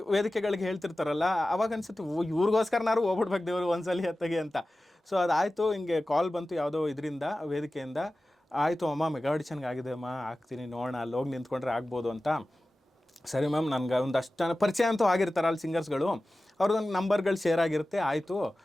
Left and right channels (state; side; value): normal; both; correlation 0.96